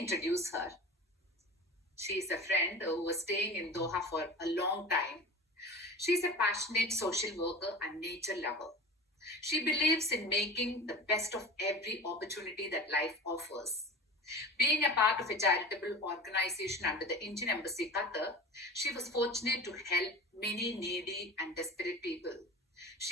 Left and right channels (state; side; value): normal; both; correlation 0.35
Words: her. She is a friend who was staying in Doha for a long time. She's a passionate social worker and nature lover. She believes in making the best of every opportunity that life offers. Being a part of a charitable organization under the Indian Embassy Qatar, she was fortunate to help many needy and desperate people.